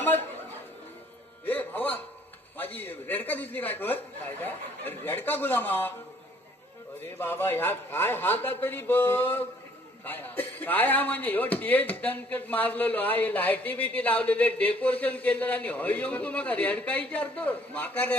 ए भावा माझी रेडका दिसली काय कर. काय काय रेडका गुलामा. अरे बाबा ह्या काय हाता तरी बघ. काय हा? काय हा म्हणजे ह्यो टेज दणकट मारलेलो हा, हे लाईटी बिटी लावलेले, डेकोरेशन केलेलं आणि हय येऊन तू मका रेडका विचारतो. माका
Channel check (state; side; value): normal; both; correlation 0.61